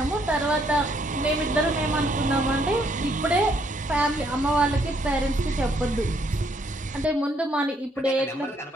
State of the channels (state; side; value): normal; both; correlation 0.70